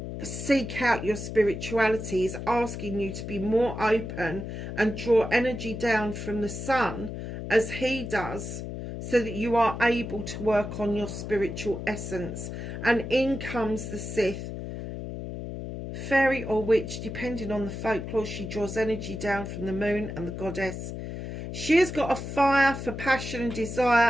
seek out your spirituality. He's asking you to be more open and draw energy down from the sun as he does, so that you are able to work on your spiritual essence. And in comes the Sith, fairy or witch, depending on the folklore. She draws energy down from the moon and the goddess. She has got a fire for passion and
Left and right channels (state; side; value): noise; left; hum, 7 dB below the sound